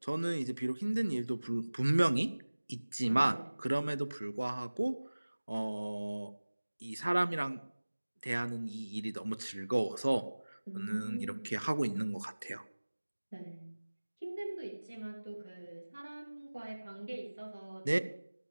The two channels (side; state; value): both; inverted; correlation -1.00